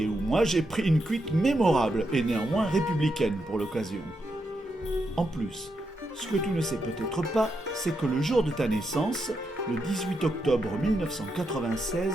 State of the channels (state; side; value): normal; both; correlation 0.83